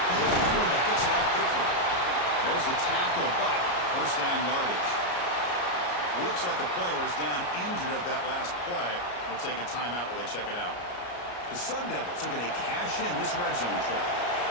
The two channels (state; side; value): late; right; 34 ms